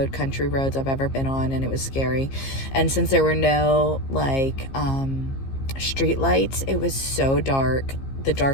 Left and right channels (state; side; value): late; right; 15 ms